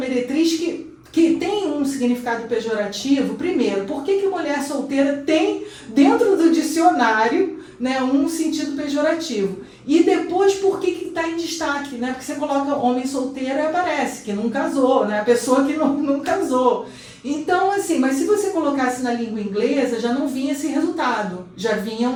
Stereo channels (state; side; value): identical; both; correlation 1.00